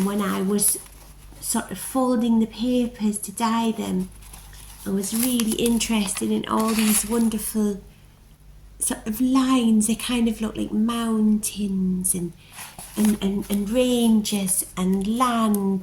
when I was sort of folding the papers to dye them, I was really interested in all these wonderful sort of lines. They kind of look like mountains and ranges and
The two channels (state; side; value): identical; both; correlation 1.00